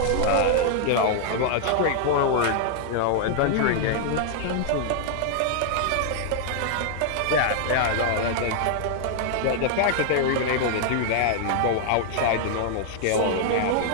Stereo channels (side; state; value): both; different; correlation -0.01